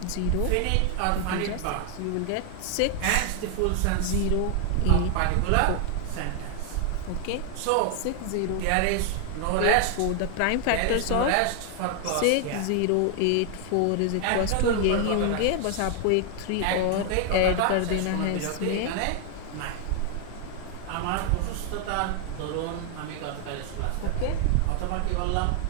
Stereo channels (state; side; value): different; both; correlation 0.00